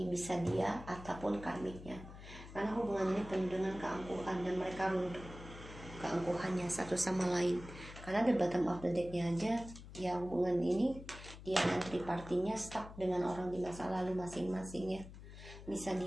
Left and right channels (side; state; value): left; noise; hum, 14 dB below the sound